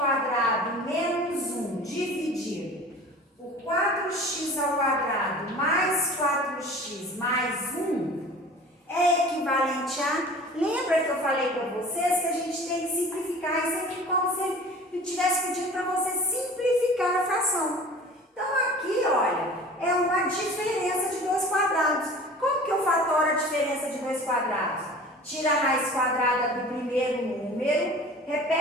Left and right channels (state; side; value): normal; both; correlation 0.42